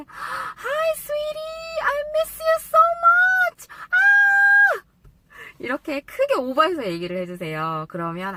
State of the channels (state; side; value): identical; both; correlation 1.00